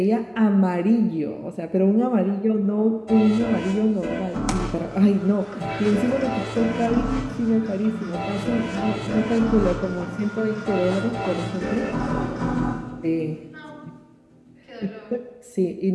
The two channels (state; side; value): identical; both; correlation 1.00